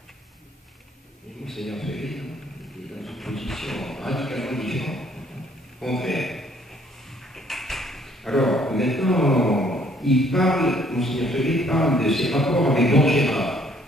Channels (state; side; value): normal; both; correlation 0.63